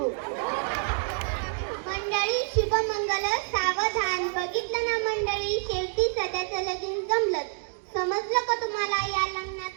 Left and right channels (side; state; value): left; silent; digital silence